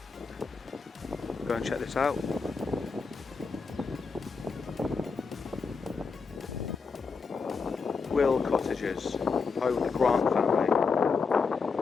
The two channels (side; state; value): right; quieter; 4.9 dB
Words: Go and check this out. Will cottages, home of the Grant family,